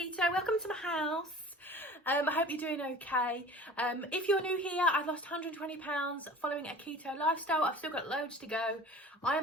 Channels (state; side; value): normal; both; correlation 0.42